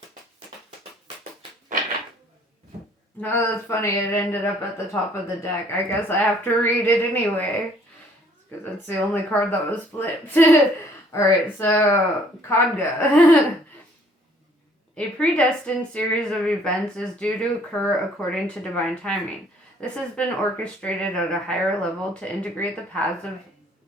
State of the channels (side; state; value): both; normal; correlation 0.59